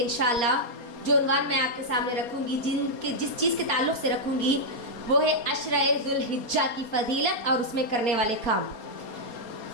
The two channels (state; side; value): late; right; 4.3 ms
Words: انشاءاللہ، جو عنوان میں آپ کے سامنے رکھوں گی، جس چیز کے تعلق سے رکھوں گی، وہ ہے عشرہ ذو الحجہ کی فضیلت اور اس میں کرنے والے کام۔